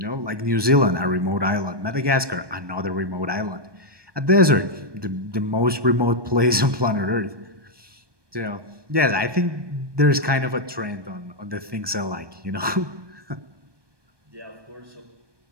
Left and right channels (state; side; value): late; left; 1.2 ms